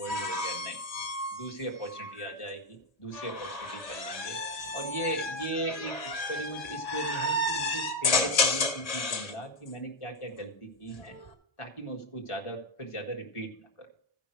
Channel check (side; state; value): right; late; 1.6 ms